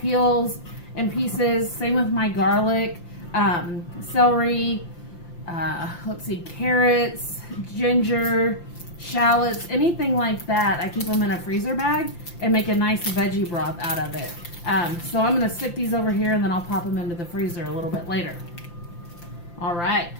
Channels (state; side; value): late; right; 5.8 ms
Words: and pieces. Same with my garlic, celery, let's see, carrots, ginger, shallots, anything like that. I keep them in a freezer bag and make a nice veggie broth out of it. So I'm going to stick these over here and then I'll pop them into the freezer a little bit later. All right,